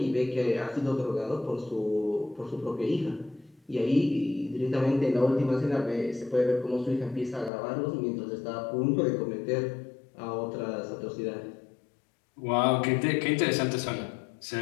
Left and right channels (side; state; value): right; drops out; at 7.5 s